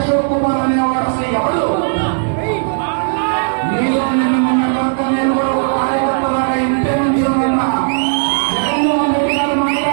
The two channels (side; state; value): left; silent; digital silence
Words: కుమార్ అనేవాడు అసలు ఎవడు? మీలో మొన్న దాకా నేను కూడా ఒక కార్యకర్తలాగా ఇంటే నుంచి ఉన్నా. జగన్మోహన్ రెడ్డి గారు